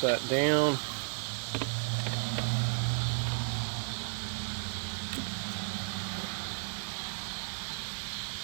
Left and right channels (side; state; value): left; silent; 55 dB below the other